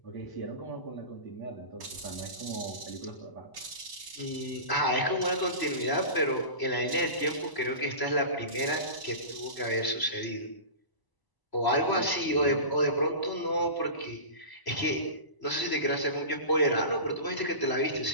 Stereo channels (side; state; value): right; late; 1.0 ms